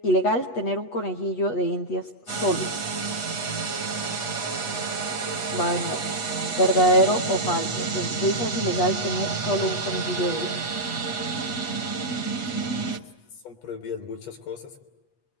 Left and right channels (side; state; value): right; late; 8.2 ms